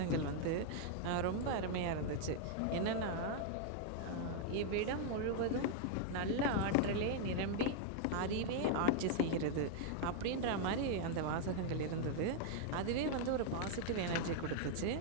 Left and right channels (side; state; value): both; different; correlation 0.00